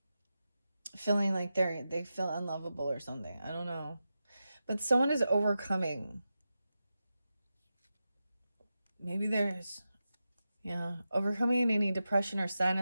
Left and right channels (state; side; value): inverted; both; correlation -0.91